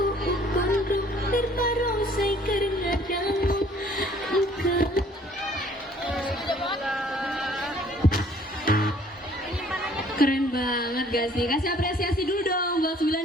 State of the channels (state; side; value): normal; both; correlation 0.57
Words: gak sih? Kasih apresiasi dulu dong buat